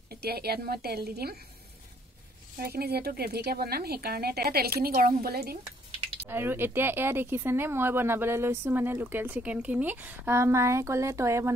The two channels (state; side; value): normal; both; correlation 0.65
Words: এতিয়া ইয়াত মই তেল দি দিম, আৰু এইখিনি যিহেতু গ্ৰেভিকে বনাম সেইকাৰণে তেলখিনি গৰম হ'বলৈ দিম। আৰু এতিয়া এয়া দেখিছেনে মই বনাবলৈ লৈছোঁ মানে লোকেল চিকেনখিনি। মায়ে ক'লে তয়ে